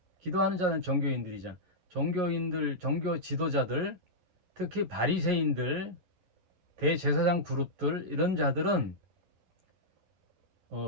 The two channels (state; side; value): late; left; 11 ms